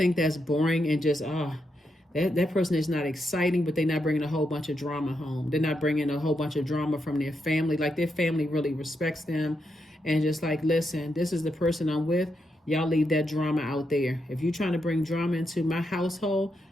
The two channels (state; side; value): normal; both; correlation 0.83